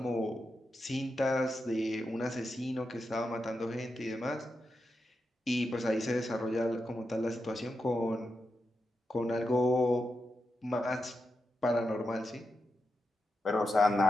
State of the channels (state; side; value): normal; both; correlation 0.88